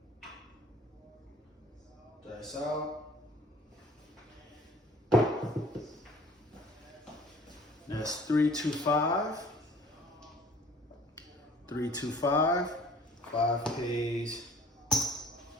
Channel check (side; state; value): both; normal; correlation 0.52